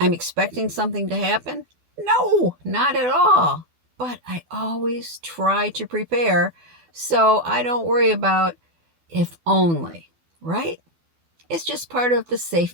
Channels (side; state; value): left; late; 12 ms